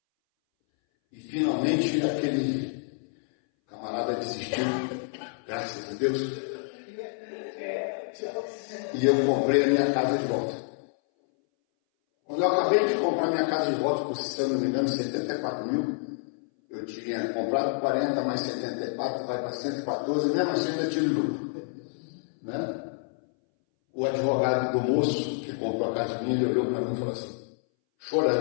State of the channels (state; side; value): silent; right; 59 dB below the other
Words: E finalmente aquele camarada desistiu, graças a Deus. E eu comprei a minha casa de volta. Quando eu acabei de comprar minha casa de volta, por se eu não me engano, 74 mil, eu tinha comprado 40 mais 74, vai para 114, mesmo assim ainda tive lucro. Né? O advogado do moço que comprou a casa minha, ele olhou para mim e falou assim,